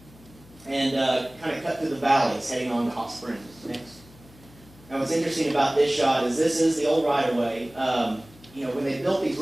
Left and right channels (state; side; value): noise; left; hum, 24 dB below the sound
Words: and kind of cut through the valleys, heading on to Hot Springs, next. Now, what's interesting about this shot is this is the old right-of-way. When they built these